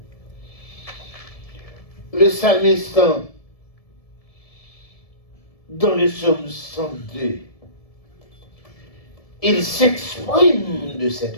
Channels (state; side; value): late; right; 1.7 ms